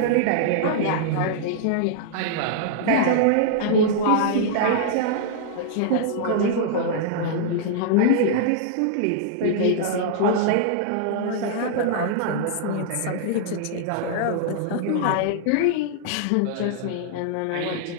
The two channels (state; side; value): different; both; correlation -0.01